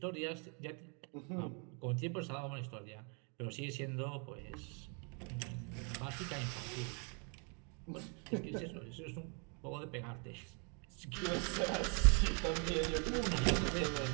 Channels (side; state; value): left; quieter; 37.0 dB